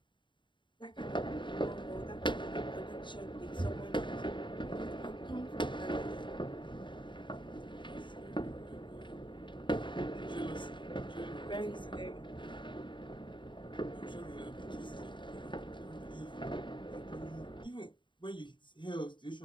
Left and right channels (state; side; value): late; right; 0.23 ms